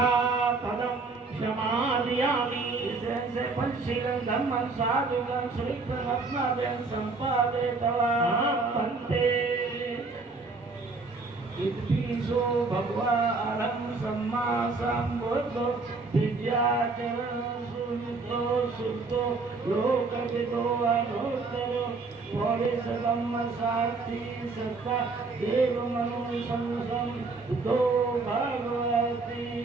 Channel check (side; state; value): left; quieter; 3.9 dB